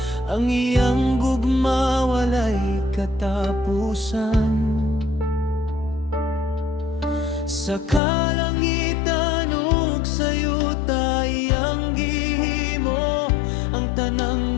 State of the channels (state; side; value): drops out; right; at 8.0 s